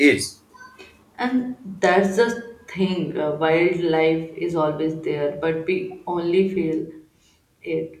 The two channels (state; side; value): identical; both; correlation 1.00